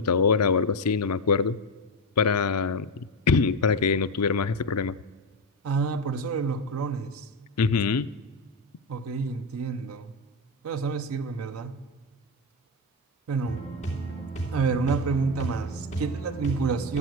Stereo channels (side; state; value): both; normal; correlation 0.12